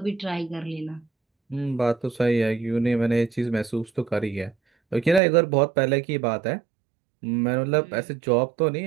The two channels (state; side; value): drops out; left; at 5.2 s